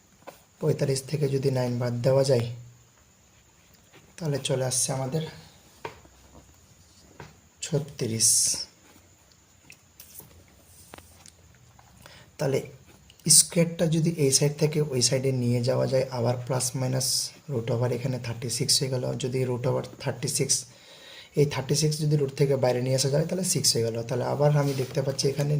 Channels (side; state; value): both; identical; correlation 1.00